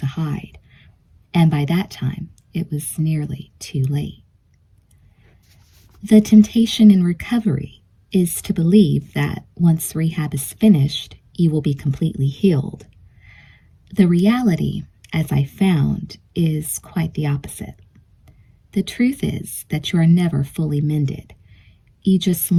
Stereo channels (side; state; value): both; identical; correlation 1.00